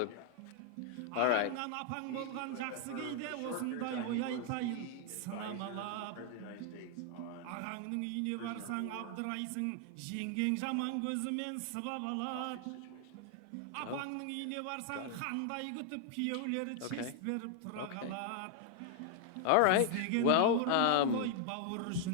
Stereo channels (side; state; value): both; different; correlation 0.00